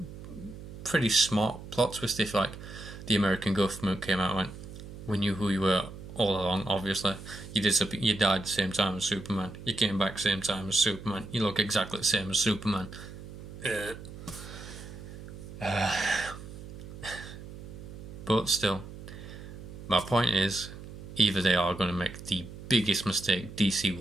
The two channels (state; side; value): noise; right; hum, 13 dB below the sound